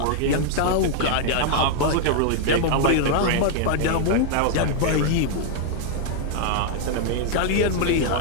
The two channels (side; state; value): both; different; correlation 0.00